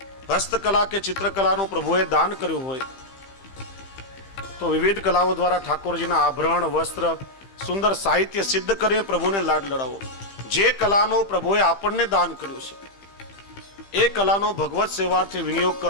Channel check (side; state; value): right; late; 15 ms